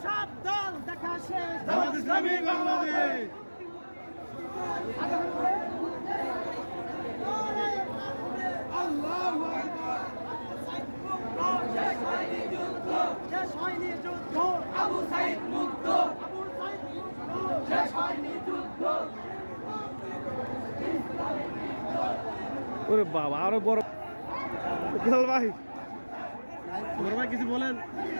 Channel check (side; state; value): both; inverted; correlation -1.00